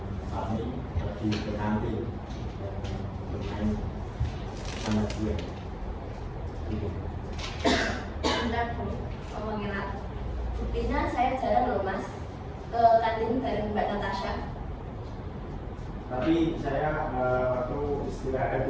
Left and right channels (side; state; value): both; identical; correlation 1.00